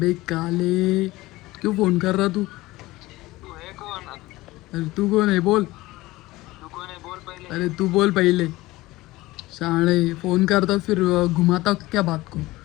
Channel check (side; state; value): right; quieter; 19.1 dB